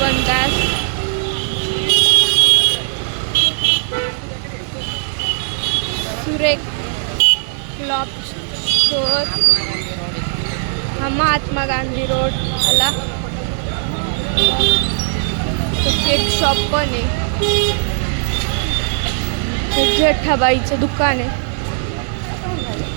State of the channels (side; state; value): left; silent; digital silence